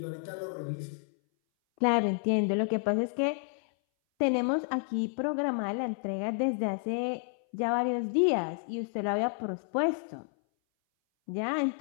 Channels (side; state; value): right; silent; 57 dB below the other